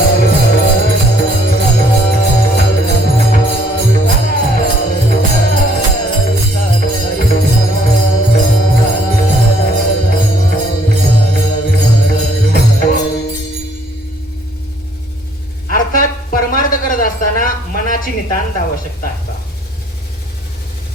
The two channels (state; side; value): normal; both; correlation 0.63